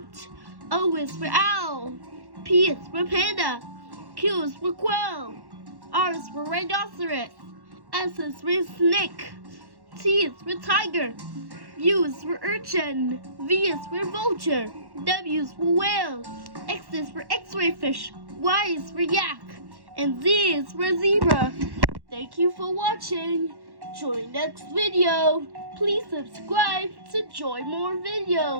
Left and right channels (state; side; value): late; left; 1.1 ms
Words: O is for owl. P is for panda. Q is for quail. R is for rhinoceros. S is for snake. T is for tiger. U is for urchin. V is for vulture. W is for whale. X is for x-ray fish. Y is for yak. And Z is for zebra. Thank you for watching. Join next video. Please subscribe to join more